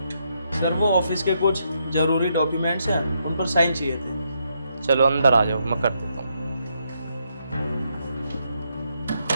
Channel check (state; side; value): inverted; both; correlation -0.78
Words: सर वो ऑफिस के कुछ जरूरी डॉक्यूमेंट्स हैं, उन पर साइन चाहिए थे। चलो अंदर आ जाओ, मैं कर देता हूँ।